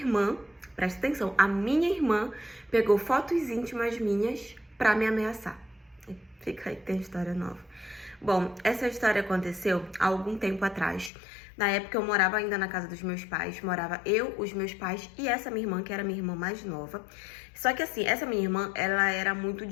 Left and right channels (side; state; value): right; drops out; at 11.1 s